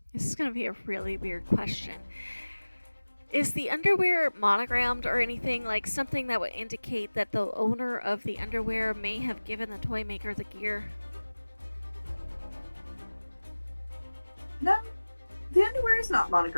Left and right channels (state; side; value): inverted; both; correlation -1.00